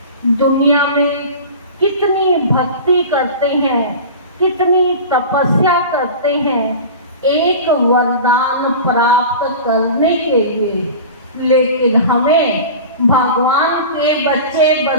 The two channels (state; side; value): inverted; both; correlation -0.34